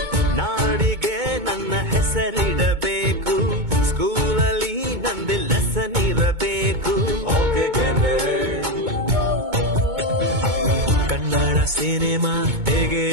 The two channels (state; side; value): late; left; 2.2 ms